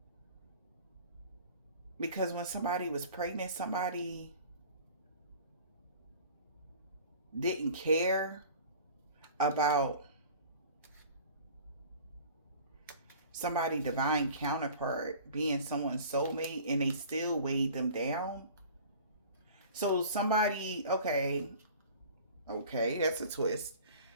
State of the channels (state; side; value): inverted; both; correlation -0.45